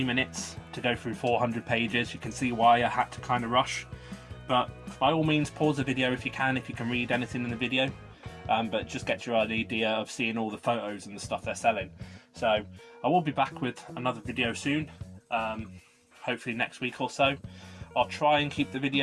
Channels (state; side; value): identical; both; correlation 1.00